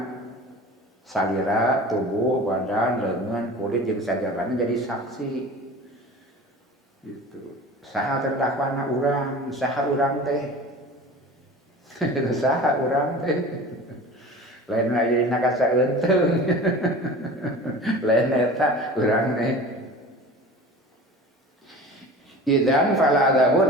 salira, tubuh, badan, lengan, kulit jeung sajabana jadi saksi. Gitu. Saha terdakwana urang, saha urang teh. Saha urang teh. Lain aya dina kasaeuteung. Lain eta urang teh. Idzan fala adzabu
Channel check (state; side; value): normal; both; correlation 0.38